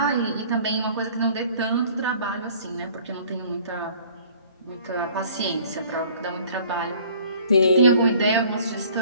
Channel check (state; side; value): inverted; both; correlation -0.53